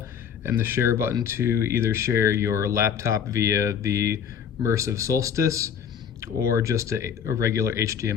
and the share button to either share your laptop via the Immersive Solstice or just a regular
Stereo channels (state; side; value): quieter; right; 7.8 dB